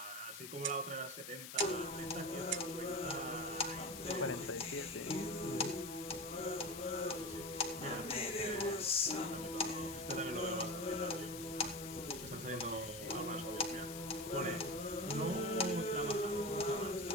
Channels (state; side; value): noise; left; hiss, 10 dB below the sound